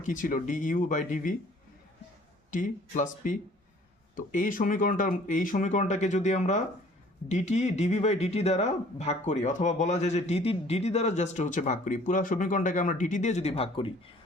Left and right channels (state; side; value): normal; both; correlation 0.54